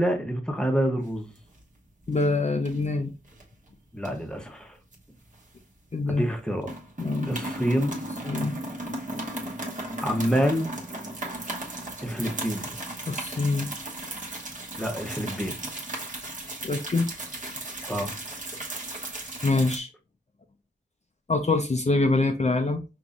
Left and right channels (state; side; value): normal; both; correlation 0.73